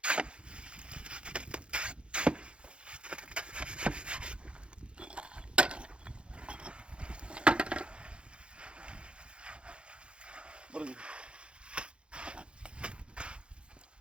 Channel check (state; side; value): late; left; 0.057 ms